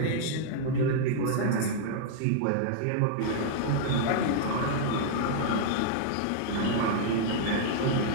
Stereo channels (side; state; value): both; different; correlation -0.01